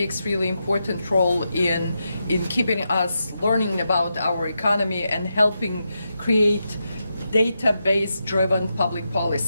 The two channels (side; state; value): both; inverted; correlation -0.86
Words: really important role in keeping us learning about our economy and helping create database driven public